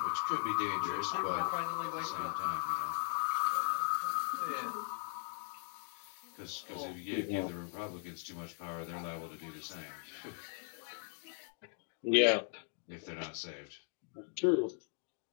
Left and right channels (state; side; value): silent; right; 52 dB below the other